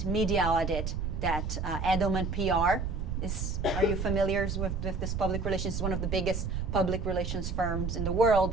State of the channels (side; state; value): right; noise; rumble, 2 dB below the sound